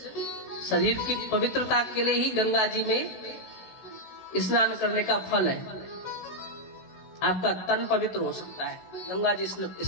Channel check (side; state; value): right; late; 16 ms